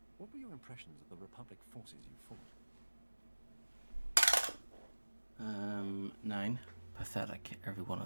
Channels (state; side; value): inverted; both; correlation -1.00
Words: what were your impressions of the Republic forces you fought? 9. Pathetic, every one